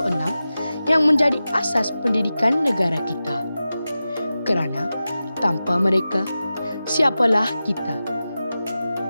yang menjadi asas pendidikan negara kita. Kerana tanpa mereka, siapalah kita?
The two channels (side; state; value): both; inverted; correlation -0.94